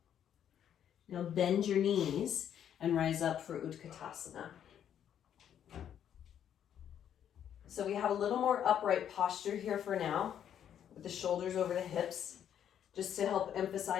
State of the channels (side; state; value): right; quieter; 9.5 dB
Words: Now bend your knees and rise up for Utkatasana. So we have a little more upright posture here for now, with the shoulders over the hips, just to help